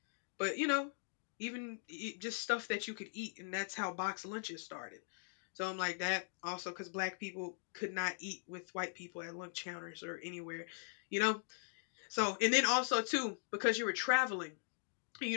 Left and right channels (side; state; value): right; silent; digital silence